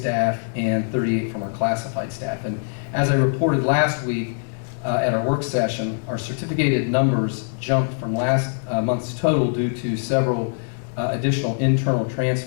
and 38 from our classified staff. And as I reported last week at our work session, our certificated numbers jumped from last month's total due to several additional internal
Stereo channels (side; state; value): right; silent; digital silence